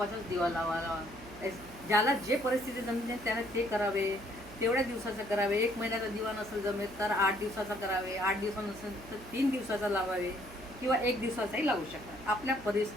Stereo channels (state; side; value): noise; right; hum, 18 dB below the sound